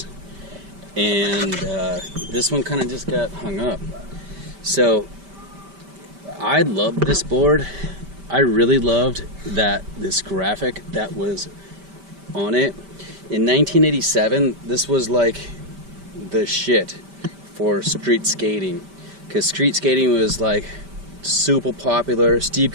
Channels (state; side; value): late; left; 5.1 ms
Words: and this one kind of just got hung up. So I loved this board. I really loved this graphic that was on it. In 1987, this was like the shit for street skating, because street skating was like super popular. Steve